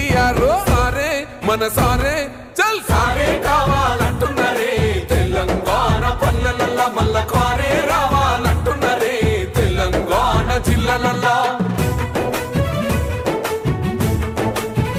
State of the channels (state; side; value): identical; both; correlation 1.00